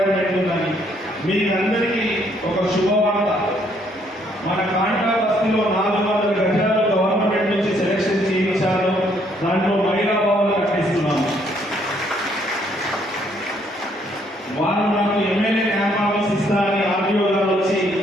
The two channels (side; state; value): both; normal; correlation 0.68